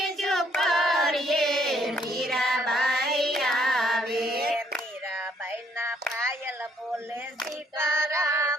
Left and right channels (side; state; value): both; normal; correlation 0.68